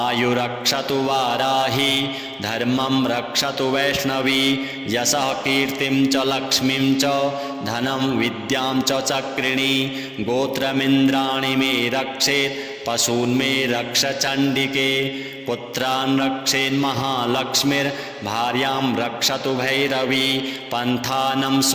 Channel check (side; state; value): both; identical; correlation 1.00